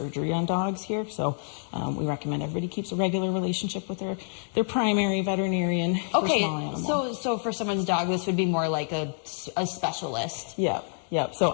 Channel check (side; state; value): right; silent; 60 dB below the other